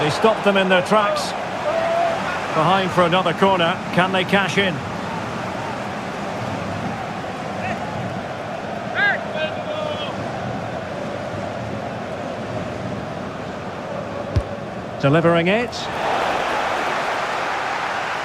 he stopped them in their tracks. Behind for another corner. Can they cash in? Delivering it.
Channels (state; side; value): identical; both; correlation 1.00